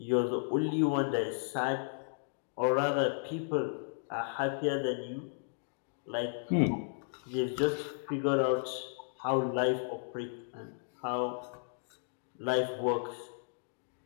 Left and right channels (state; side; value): silent; right; digital silence